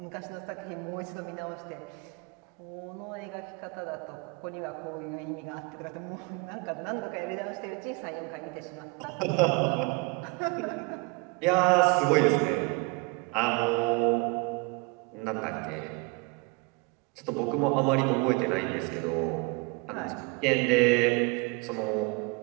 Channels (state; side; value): quieter; left; 27.9 dB